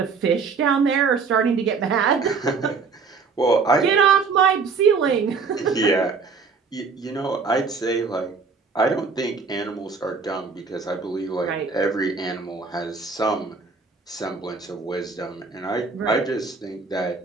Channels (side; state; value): left; quieter; 4.9 dB